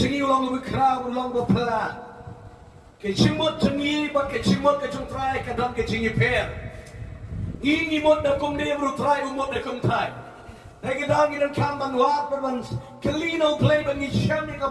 along with crowd along the pala. Ke jingmut to me, but ke jingmut ke jong try ke dam ke jingi pair. Ini mut da kum ne bru try umut da kum try. They get down in kam ban wat but once Kalino play but ni sham ni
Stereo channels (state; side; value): identical; both; correlation 1.00